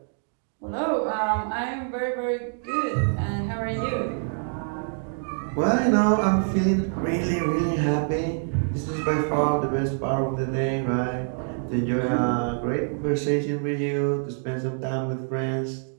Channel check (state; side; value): silent; left; 61 dB below the other